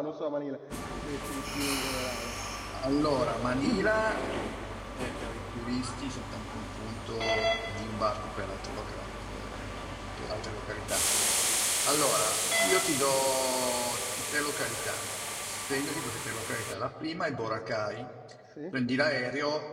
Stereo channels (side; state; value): both; identical; correlation 1.00